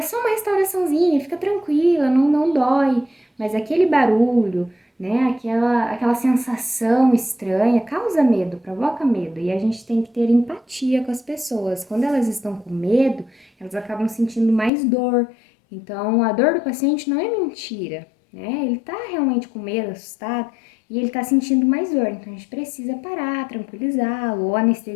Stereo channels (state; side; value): drops out; right; at 14.7 s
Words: só uma restauraçãozinha, fica tranquila, não dói, mas aquele barulho, né? Aquela sensação estranha causa medo, provoca medo. E a gente tem que ter empatia com as pessoas. Quando elas estão com medo, elas acabam sentindo mais dor. Então, a dor do paciente não é mentira, né? Ele tá realmente com medo, assustado, e ele tá sentindo mais dor. Então, a gente precisa parar, tranquilizá-lo, ou